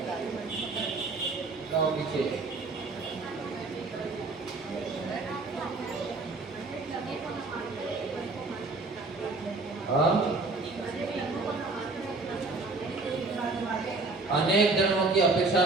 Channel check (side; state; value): left; quieter; 3.6 dB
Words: जाओ पीछे। हाँ? अनेक धर्मों की अपेक्षा